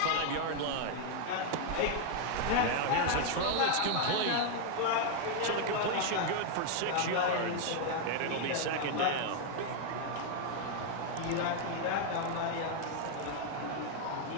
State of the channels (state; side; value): different; both; correlation 0.00